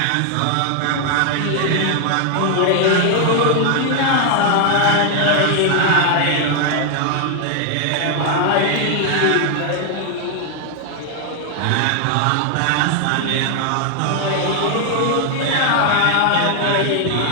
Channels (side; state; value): both; different; correlation 0.00